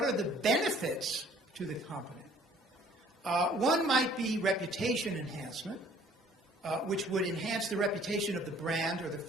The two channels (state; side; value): normal; both; correlation 0.56